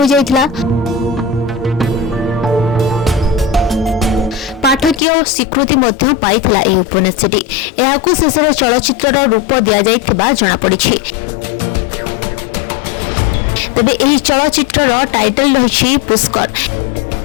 जाइथिला। पाठकीय स्वीकृति मध्य पाइथिला एही उपन्यासटी। एहाकु शेषर चलचित्रर रूप दिया जाइथिबा जणा पड़िछि। तबे एही चलचित्रर टाइटल रहिछि पुष्कर।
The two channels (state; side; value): drops out; right; at 5.0 s